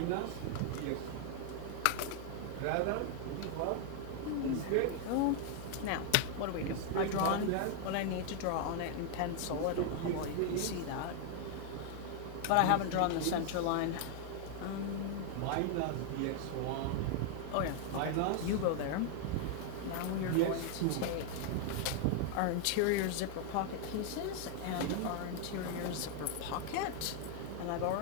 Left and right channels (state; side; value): different; both; correlation 0.00